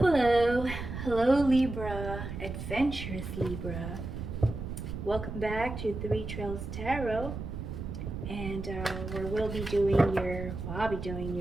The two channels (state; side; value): noise; right; rumble, 7 dB below the sound